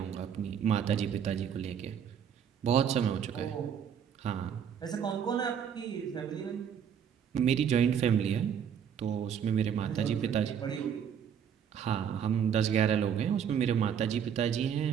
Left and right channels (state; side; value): quieter; left; 8.2 dB